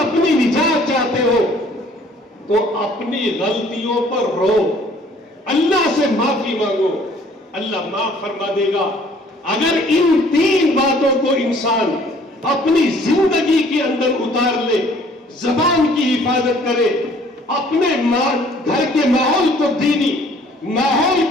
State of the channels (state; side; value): normal; both; correlation 0.57